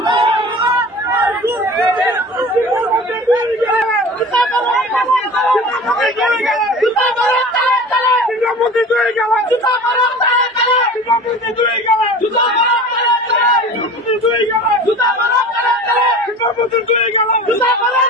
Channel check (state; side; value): normal; both; correlation 0.38